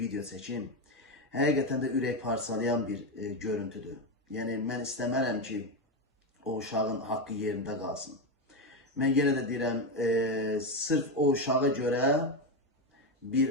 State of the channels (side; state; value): both; normal; correlation 0.11